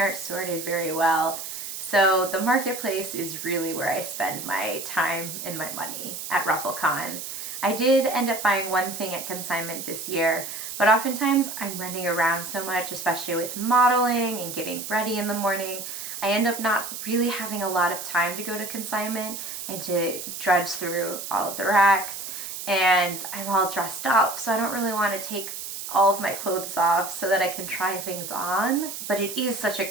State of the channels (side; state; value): right; noise; hiss, 8 dB below the sound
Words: sorted very well. So the marketplace is really where I spend my time and my money at RuffleCon. I did end up buying one thing at consignment this year, but oftentimes I'm running around so much, especially with modeling and getting ready in the morning. I end up not really having a lot of time to go to consignment and to drudge through all of the racks, and I'm all dressed up, so I don't really want to take all of my clothes off so that I can try things on. But it is such a